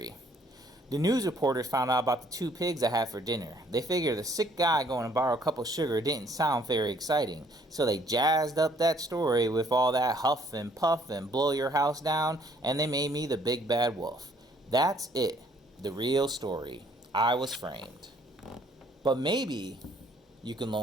The news reporters found out about the two pigs I had for dinner. They figured the sick guy going to borrow a cup of sugar didn't sound very exciting, so they jazzed up that story with all that huff and puff and blow your house down, and they made me the big bad wolf. That's it, the real story. I was framed. But maybe you can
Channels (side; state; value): both; normal; correlation 0.63